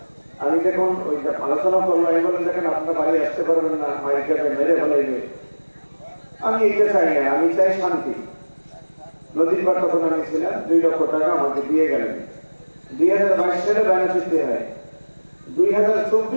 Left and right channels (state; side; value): inverted; both; correlation -1.00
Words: আমি যখন ওই আলোচনা করলাম, আমি বললাম দেখেন আপনারা বাড়ি আসতে পারবেন না, মাইকাতে মেরে ফেলাইবে। আমি এইটা চাই না, আমি চাই শান্তি। নদীর পার তখন আমি ছিলাম, 2 লক্ষ টাকা আমাকে দিয়ে গেলেন। 2022 সালে বায়না চুক্তি হয়।